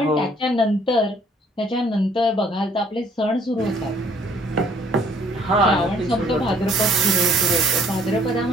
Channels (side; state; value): both; normal; correlation 0.61